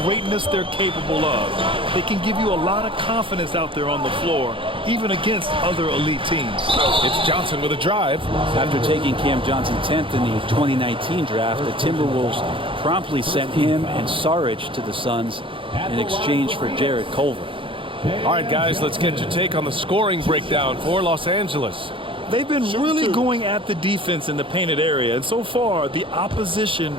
greatness they're capable of. They can give you a lot of confidence out there on the floor, even against other elite teams. It's Johnson with a drive. After taking Cam Johnson 10th in the 2019 draft, the Timberwolves promptly sent him and Saric to the Suns in exchange for Jarrett Culver. All right, guys, let's get your take on the scoring breakdown for Los Angeles. They've been really going at the defense in the painted area, and so far the opposition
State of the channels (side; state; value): left; late; 0.25 ms